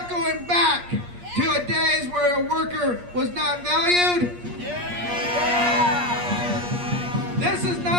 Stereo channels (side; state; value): left; late; 8.5 ms